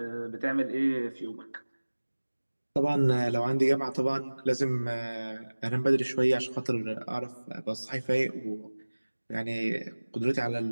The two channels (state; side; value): inverted; both; correlation -1.00